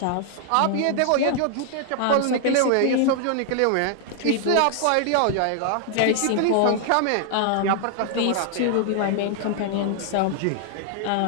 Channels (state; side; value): different; both; correlation 0.00